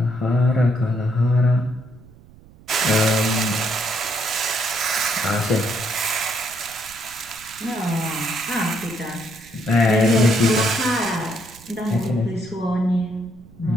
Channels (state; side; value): noise; right; rumble, 23 dB below the sound